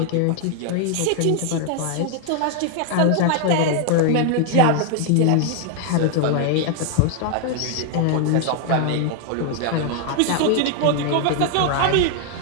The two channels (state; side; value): different; both; correlation 0.00